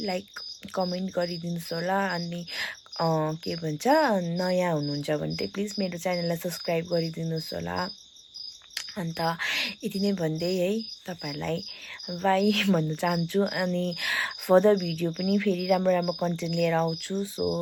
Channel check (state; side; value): identical; both; correlation 1.00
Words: लाइक कमेन्ट गरिदिनुहोस् होला। अनि के भन्छ नयाँ हुनुहुन्छ भने चाहिँ प्लिज मेरो च्यानललाई सब्सक्राइब गरिदिनुहोस् होला। अन्त यति नै भन्दै है तपाईँहरूलाई बाई भन्न चाहन्छु। अनि फर्दर भिडियो पनि फेरि राम्रो राम्रो कन्टेन्ट लिएर आउँछु।